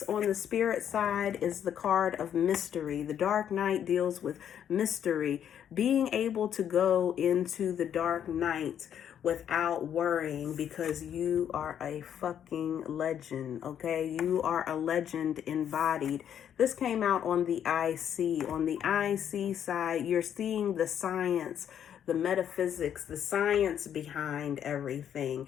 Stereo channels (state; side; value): quieter; right; 9.3 dB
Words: on the spirit side is the card of mystery. The dark night deals with mystery. Being able to go into the dark night without worrying, because you are a fucking legend, okay? You are a legend embodied. This came out on the IC. On the IC side, you're seeing the science, the metaphysics, the science behind everything.